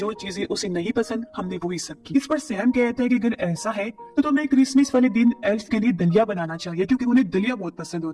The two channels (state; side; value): identical; both; correlation 1.00